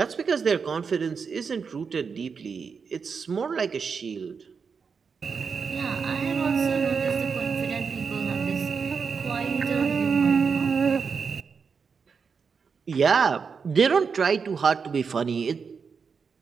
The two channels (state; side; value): quieter; left; 5.7 dB